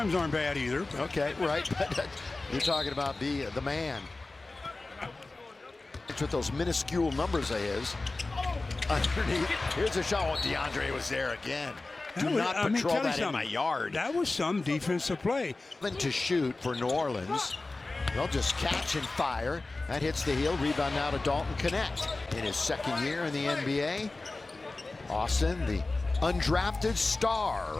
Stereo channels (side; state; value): right; quieter; 3.3 dB